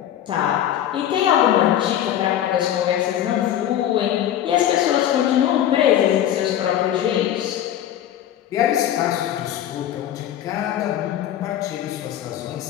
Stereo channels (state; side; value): quieter; right; 11.1 dB